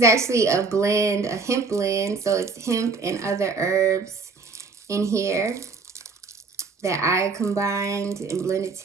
actually a blend, a hemp blend. So it's hemp and other herbs in here that I combined and blended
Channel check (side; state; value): left; quieter; 4.3 dB